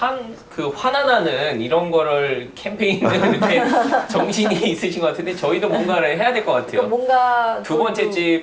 환원하는 이런 거를 캠페인을 이렇게 정신이 있으신 것 같은데 저희도 뭔가를 해야 될 것 같아요. 그러니까 뭔가 두 번째 집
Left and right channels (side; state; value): both; identical; correlation 1.00